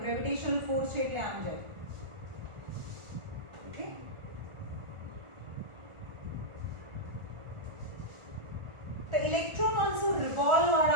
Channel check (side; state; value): left; late; 1.4 ms